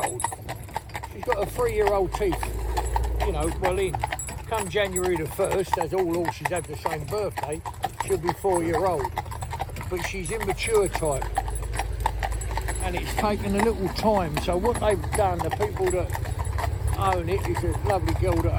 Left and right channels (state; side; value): identical; both; correlation 1.00